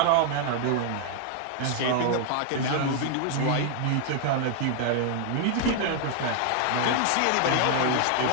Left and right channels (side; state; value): both; different; correlation 0.00